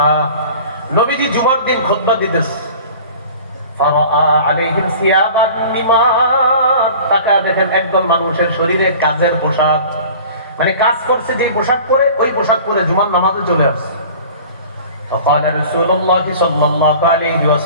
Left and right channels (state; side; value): inverted; both; correlation -0.43